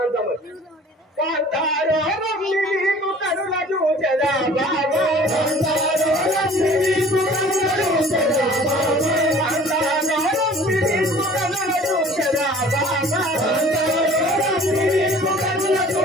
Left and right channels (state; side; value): normal; both; correlation 0.49